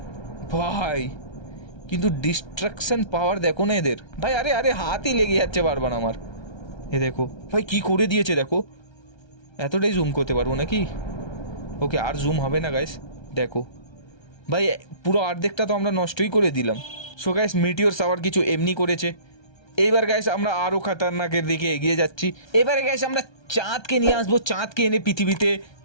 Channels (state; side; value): late; right; 1.3 ms